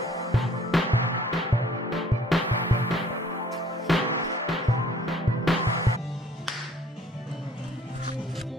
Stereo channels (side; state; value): both; normal; correlation 0.57